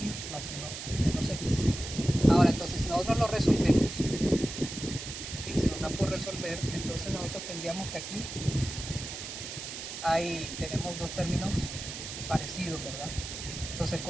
más 1 menos x. Ahora, entonces, si nosotros lo resolvemos, si se nos da por resolver, entonces nosotros tendríamos que aquí tenemos dos términos parecidos, ¿verdad? Entonces,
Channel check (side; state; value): right; noise; hiss, 8 dB below the sound